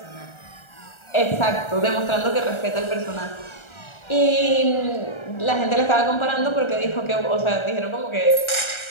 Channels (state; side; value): late; right; 1.4 ms